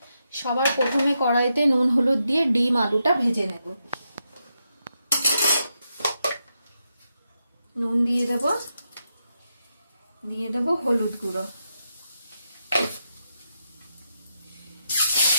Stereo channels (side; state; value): both; inverted; correlation -0.84